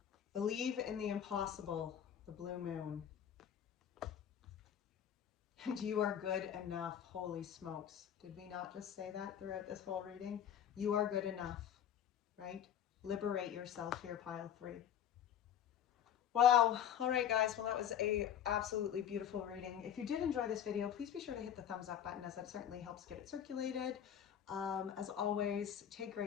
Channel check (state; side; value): quieter; right; 9.5 dB